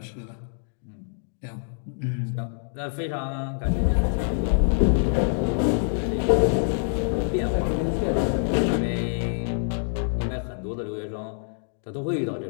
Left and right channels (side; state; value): right; silent; digital silence